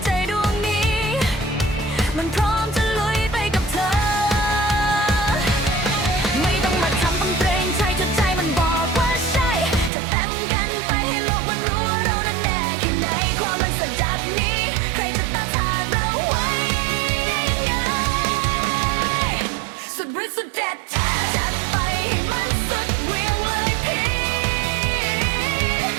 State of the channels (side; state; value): left; drops out; at 9.9 s